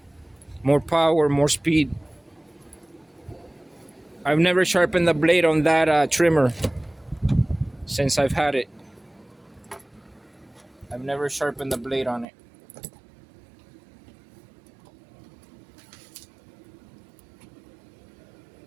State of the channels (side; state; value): left; drops out; at 12.2 s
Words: More power, more speed. I've never sharpened the blade on that trimmer since I've had it. I've never sharpened the blade on it.